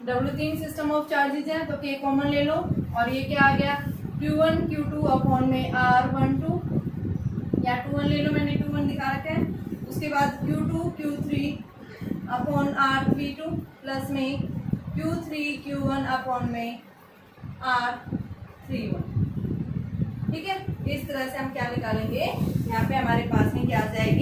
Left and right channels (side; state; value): both; identical; correlation 1.00